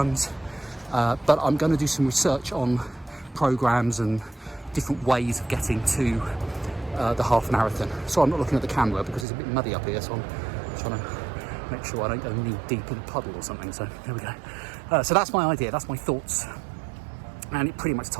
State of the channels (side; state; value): left; drops out; at 9.2 s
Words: but I'm going to do some research on programs and different ways of getting to the half marathon. So I'm not looking at the camera because it's a bit muddy up here, so I'm trying to make sure I don't go knee deep in a puddle or something. So there we go. So that's my idea, that's my thoughts, and it pretty much